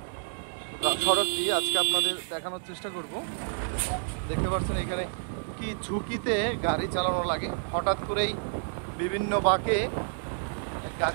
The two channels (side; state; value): left; silent; digital silence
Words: সড়কটি আজকে আপনাদের দেখানোর চেষ্টা করব। দেখতে পাচ্ছেন এখানে কি ঝুঁকিতে গাড়ি চালানো লাগে। হঠাৎ করেই বিভিন্ন বাঁকে